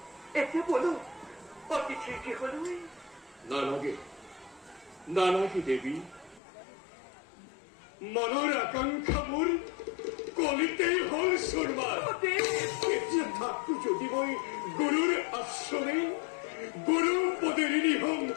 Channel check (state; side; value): drops out; right; at 6.4 s